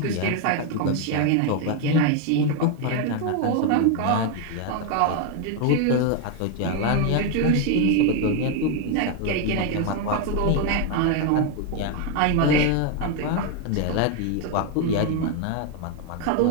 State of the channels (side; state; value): both; different; correlation 0.01